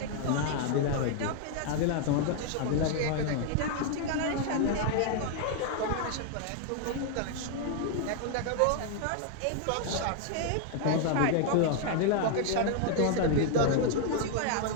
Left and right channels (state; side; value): different; both; correlation 0.00